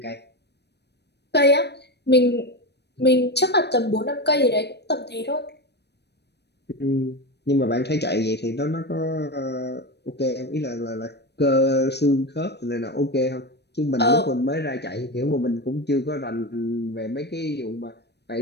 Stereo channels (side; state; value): right; late; 0.49 ms